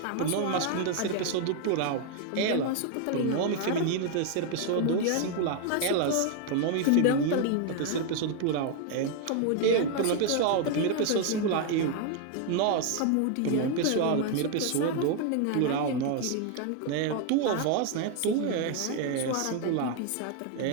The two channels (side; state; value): both; different; correlation 0.01